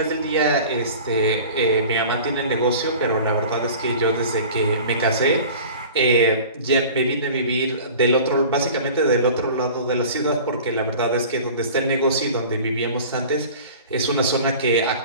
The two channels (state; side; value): inverted; both; correlation -0.41